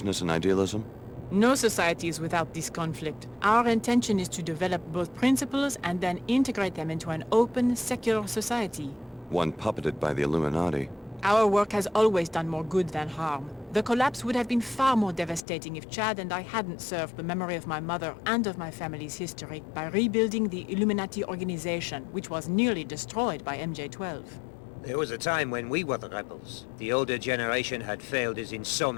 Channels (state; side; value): drops out; right; at 15.5 s